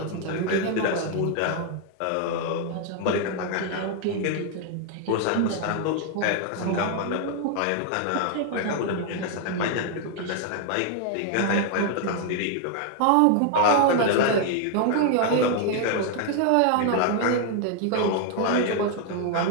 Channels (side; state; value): both; different; correlation 0.00